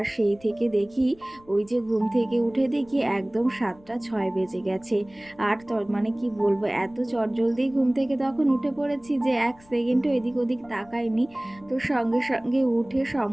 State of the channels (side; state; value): left; noise; rumble, 27 dB below the sound